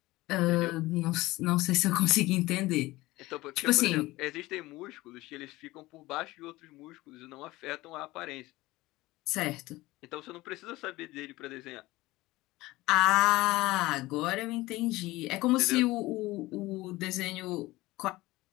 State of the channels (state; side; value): quieter; right; 19.3 dB